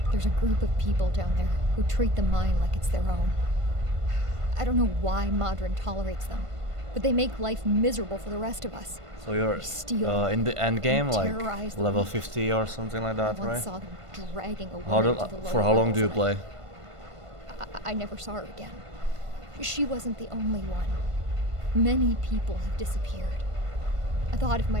There's a group of people down there who treat the mine like it's their own. I don't know why Madron tolerates them, but they make life miserable for the rest of us. So you're in the end game, like level 50 or something like that, I right? saw them dragging a woman to the For how long do you play? I never saw her again. She wasn't the only one. Many people have disappeared. I thought if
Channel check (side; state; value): left; late; 1.5 ms